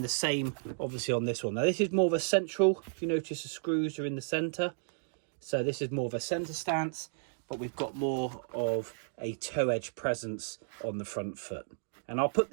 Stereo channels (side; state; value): left; silent; digital silence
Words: the same obviously on this one. Now this is more of a central, if you notice the screws are in the centre, so this is more of a centre stance, but we've got more of a toe edge presence on the front foot. And I'll put